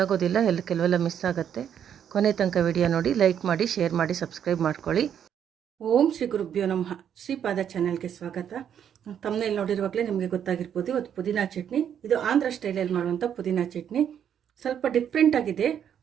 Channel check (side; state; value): left; quieter; 8.9 dB